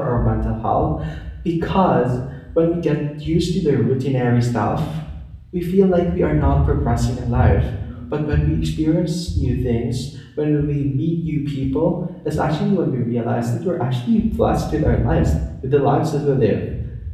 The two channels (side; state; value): both; identical; correlation 1.00